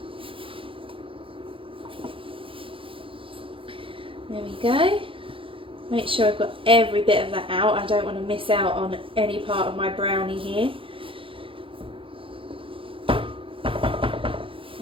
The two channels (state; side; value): late; left; 0.26 ms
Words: There we go. Make sure I've got every bit of that out. I don't want to miss out on any part of my brownie here.